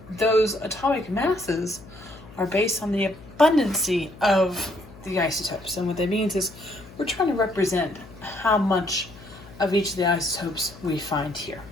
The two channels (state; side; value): noise; left; hum, 20 dB below the sound